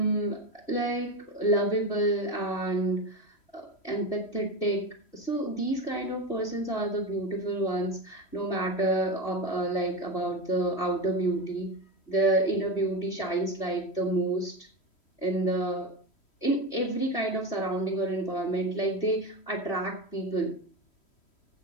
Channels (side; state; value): right; late; 3.1 ms